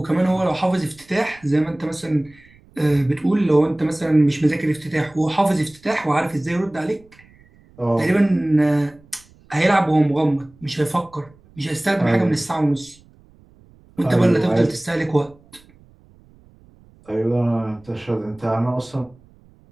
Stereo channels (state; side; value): noise; right; rumble, 28 dB below the sound